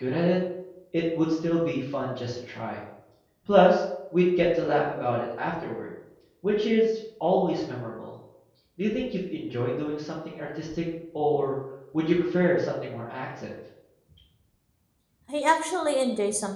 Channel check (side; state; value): both; identical; correlation 1.00